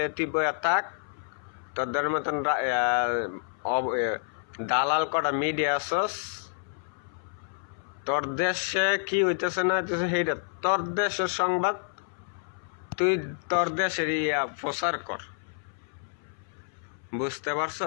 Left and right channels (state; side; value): silent; right; 59 dB below the other